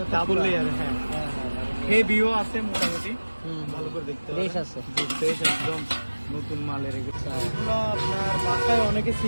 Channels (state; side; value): inverted; both; correlation -1.00